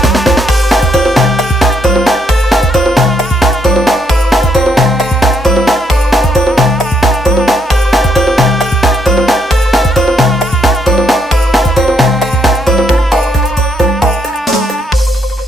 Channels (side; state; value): both; normal; correlation 0.74